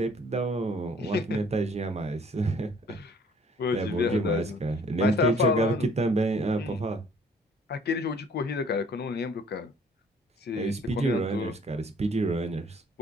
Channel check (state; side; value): normal; both; correlation 0.58